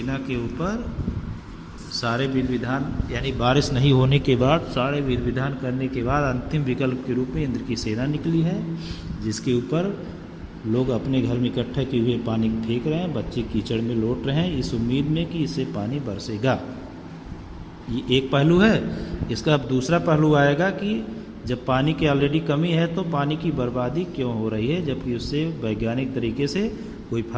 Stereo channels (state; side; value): identical; both; correlation 1.00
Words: के ऊपर सारे विधि विधान, यानी बारिश नहीं होने के बाद सारे विधि विधान करने के बाद अंतिम विकल्प के रूप में इंद्र की सेना निकली है, जिसके ऊपर लोग अपने घर में इकट्ठा किए हुए पानी फेंक रहे हैं, बच्चे कीचड़ में लौट रहे हैं इस उम्मीद में कि इससे पानी बरसेगा। ये एक पहलू है। इसका अब दूसरा पहलू आएगा कि जब पानी की ऑलरेडी कमी है तो पानी की बर्बादी क्यों हो रही है, जबकि उससे वैज्ञानिक तरीके से कोई